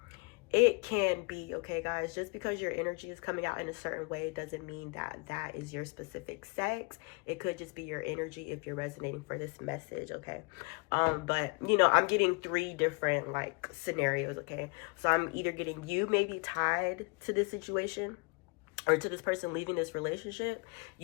It can be, okay, guys? Just because your energy is coming out in a certain way doesn't mean that that is your specific sex. It could just be your energy if you're resonating for this message, okay? But, you know, I'm getting 3 different, like, scenarios, okay? So I'm either getting you may be tied to this situation, or to this person leaving this relationship.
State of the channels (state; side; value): quieter; right; 31.3 dB